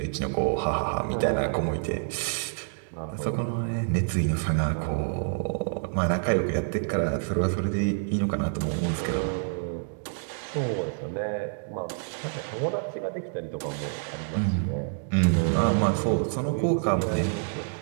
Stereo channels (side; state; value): left; silent; digital silence